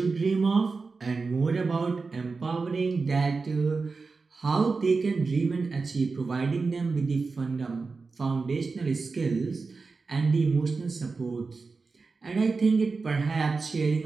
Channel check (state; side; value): quieter; left; 4.3 dB